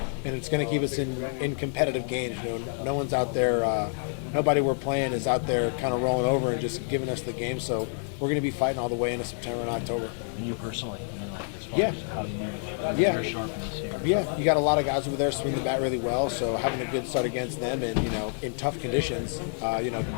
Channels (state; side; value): silent; right; 56 dB below the other